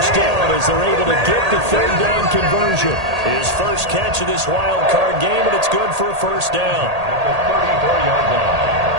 down as they're able to get the 3rd down conversion. His first catch of this wild card game, and it's good for a first down. At the 34-yard line.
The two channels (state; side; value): late; left; 1.8 ms